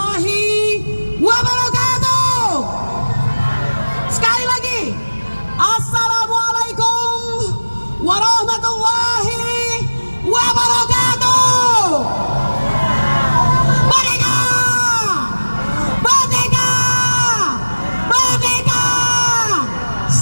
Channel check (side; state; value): both; inverted; correlation -1.00